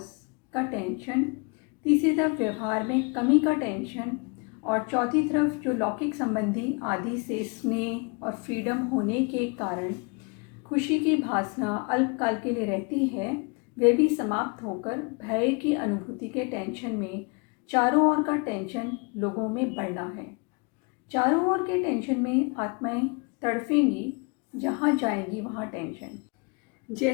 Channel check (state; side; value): quieter; right; 32.2 dB